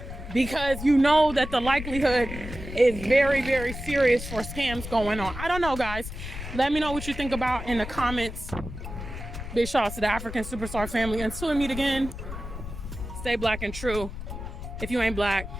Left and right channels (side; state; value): left; noise; rumble, 9 dB below the sound